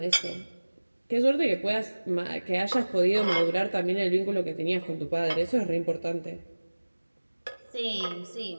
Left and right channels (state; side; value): inverted; both; correlation -1.00